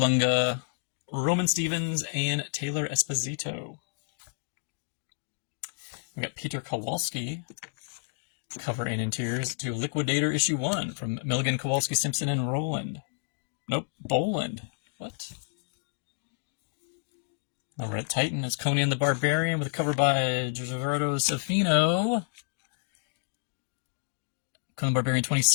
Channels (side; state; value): right; silent; digital silence